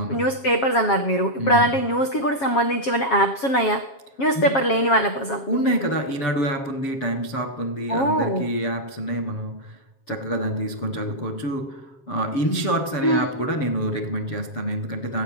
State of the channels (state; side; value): late; right; 7.4 ms